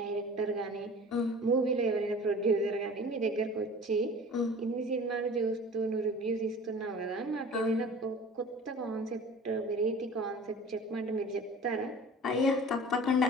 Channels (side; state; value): both; normal; correlation 0.41